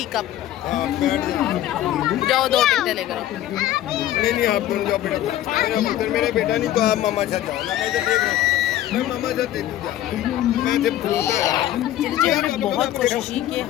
कप। जाओ 2 टिकटें लेकर। नहीं आप दोनों जाओ बेटा, मेरा पुत्र मेरा बेटा नहीं तो आप मामा साथ जाओ ना, मैं तो देख रहा हूँ, मैं मामा साथ देख जा, मैं जब चलिए हमने बहुत कोशिश की कि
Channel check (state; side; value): quieter; right; 13.0 dB